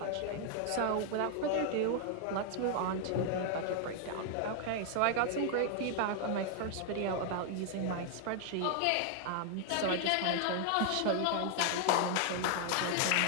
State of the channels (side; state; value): both; different; correlation 0.00